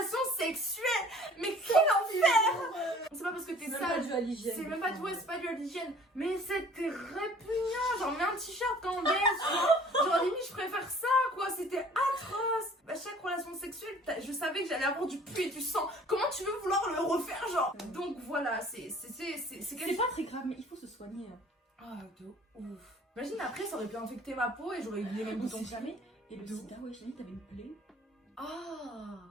sexuelle. Mais quel enfer! C'est pas parce que t'es C'est même pas sale. dû à l'hygiène. C'est même pas tout, c'est pas dû à l'hygiène. Mais c'était répugnant. Genre, mets un t-shirt quand on baisse. Genre, limite, je préfère ça, quoi. C'était atroce. À chaque relation sexuelle, je savais que j'allais avoir du pu et du sang. Comment tu veux vouloir le refaire, genre? Donc voilà, c'est C'est pas très grave, mais il faut se soigner. Ah, de ouf. Imagine après, ça aurait pu infecter ma peau et j'aurais eu les mêmes On boutons. sait jamais. Et le sida, ouais, j'ai dit, t'avais une plaie. Ah.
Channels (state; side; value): normal; both; correlation 0.51